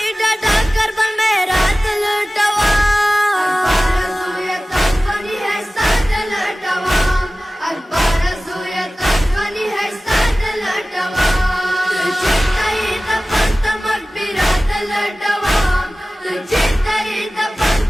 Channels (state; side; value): normal; both; correlation 0.97